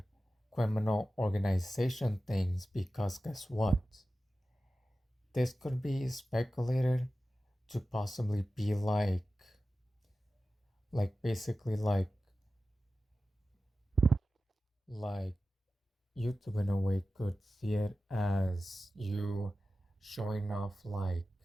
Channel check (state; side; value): normal; both; correlation 0.94